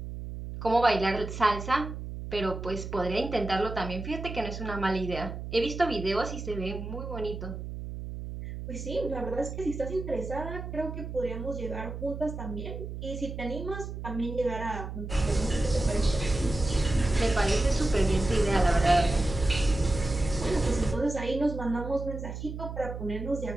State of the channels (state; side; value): noise; right; hum, 8 dB below the sound